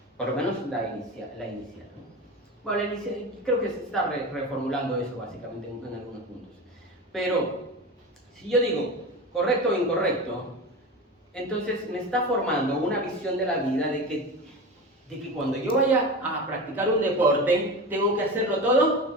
por lo menos la inicial, ¿no? Bueno, la inicial, creo que se está reformulando eso básicamente en algunos puntos, pero si yo digo correcto o incorrecto, entonces me está formando una visión de la vida de que cuando yo vaya a practicar un deporte, tengo que hacerlo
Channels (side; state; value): both; normal; correlation 0.27